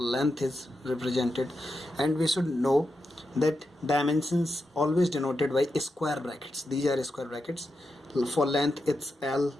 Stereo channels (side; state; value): both; normal; correlation 0.87